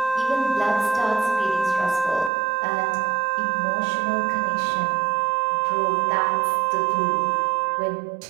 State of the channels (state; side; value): drops out; left; at 2.3 s